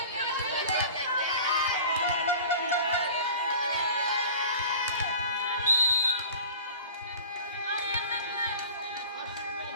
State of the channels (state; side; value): inverted; both; correlation -0.41